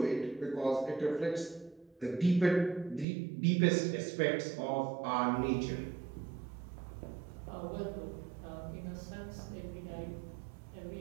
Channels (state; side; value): drops out; left; at 3.1 s